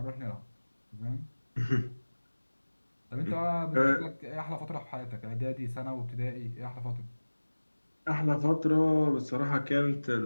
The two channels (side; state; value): both; inverted; correlation -1.00